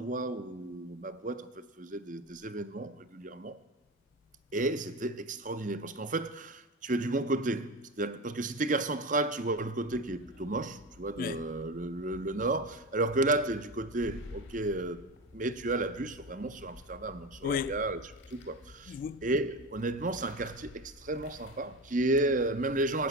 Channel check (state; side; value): normal; both; correlation 0.24